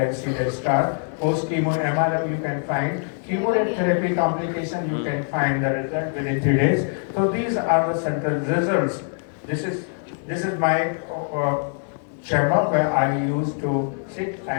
see the star. Post chemo MRM you can find. Chemotherapy complication you can find the result within 3 days. So these are the central results. This is my chamber where I used to sit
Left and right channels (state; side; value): silent; right; 56 dB below the other